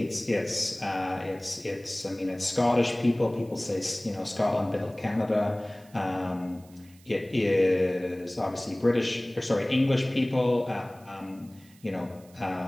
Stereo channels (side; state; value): right; noise; hiss, 27 dB below the sound